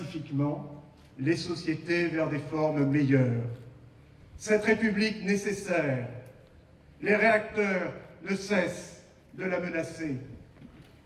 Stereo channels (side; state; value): both; identical; correlation 1.00